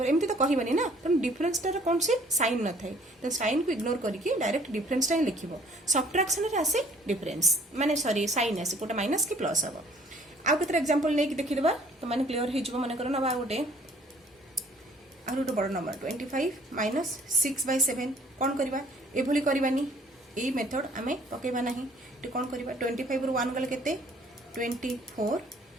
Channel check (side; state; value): both; normal; correlation 0.57